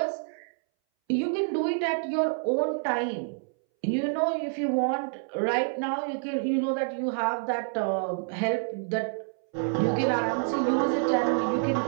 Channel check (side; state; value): left; silent; 60 dB below the other